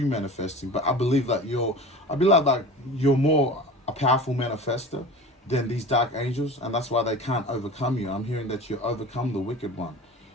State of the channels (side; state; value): both; normal; correlation 0.36